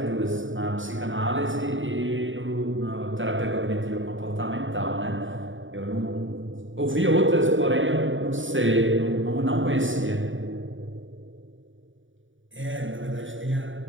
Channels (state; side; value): late; left; 0.56 ms